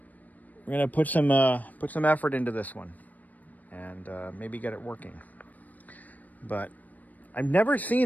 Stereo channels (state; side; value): late; right; 0.079 ms